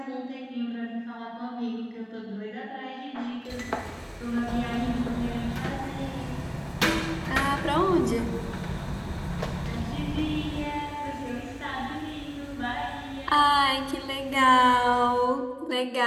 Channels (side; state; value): both; identical; correlation 1.00